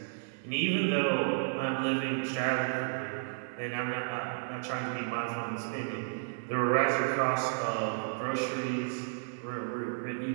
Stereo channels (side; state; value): left; silent; digital silence